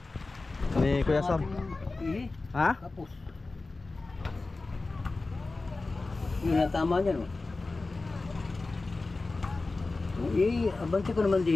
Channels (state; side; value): quieter; right; 3.5 dB